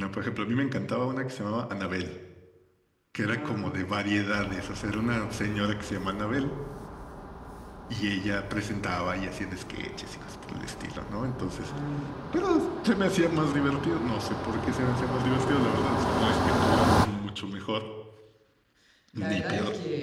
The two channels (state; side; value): identical; both; correlation 1.00